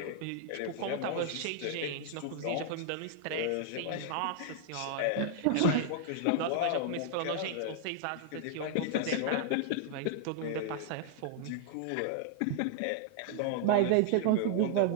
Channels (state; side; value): different; both; correlation -0.01